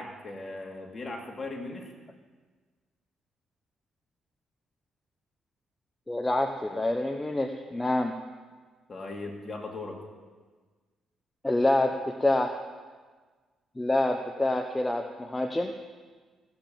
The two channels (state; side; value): normal; both; correlation 0.95